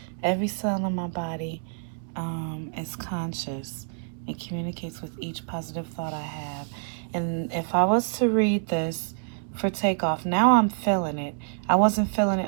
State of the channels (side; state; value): left; silent; digital silence